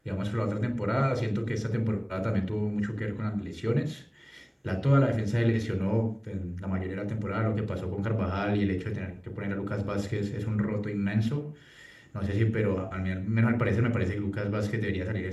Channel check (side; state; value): both; identical; correlation 1.00